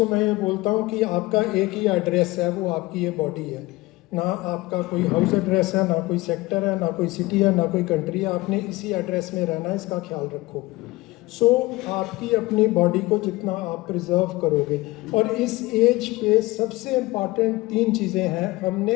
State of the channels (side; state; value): right; quieter; 20.6 dB